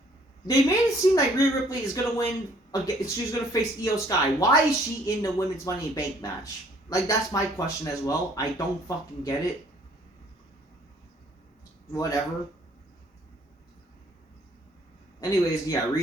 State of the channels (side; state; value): both; normal; correlation 0.60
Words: they made it seem like Rhea Ripley is gonna win. She's gonna face Io Sky. Why is she in the women's Money in the Bank match? Like, that's my question as well. I don't fucking get it. Whatever. Anyways, yeah,